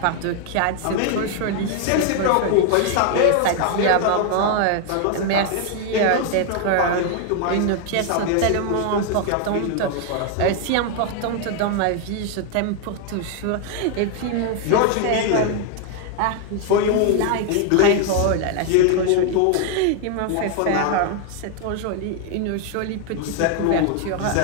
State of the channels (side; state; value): both; different; correlation 0.00